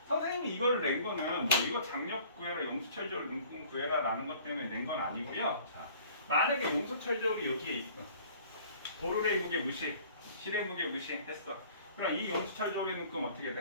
선생님이 이걸 낸 거는 뭐 이거 장력 구해라, 용수철 저울 눈금 구해라 라는 것 때문에 낸 건 아니고요. 자, 만약에 용수철 저울이 여기에 있어. 도르의 무게 무시, 실의 무게 무시했어. 그럼 이 용수철 저울의 눈금 어떻게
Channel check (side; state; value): both; inverted; correlation -0.51